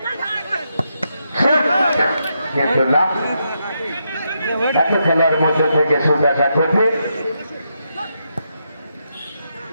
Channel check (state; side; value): inverted; both; correlation -0.82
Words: কিন্তু না এত খেলার মধ্যে থেকে শুট আসা কঠিন